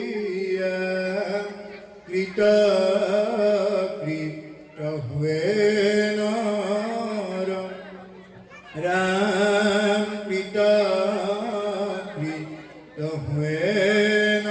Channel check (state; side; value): identical; both; correlation 1.00